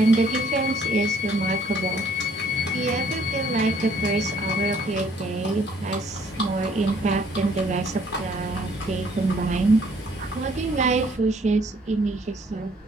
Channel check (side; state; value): both; normal; correlation 0.62